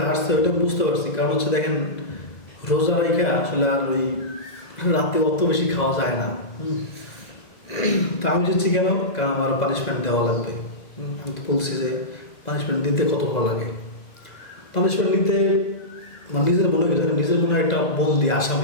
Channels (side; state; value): right; late; 2.0 ms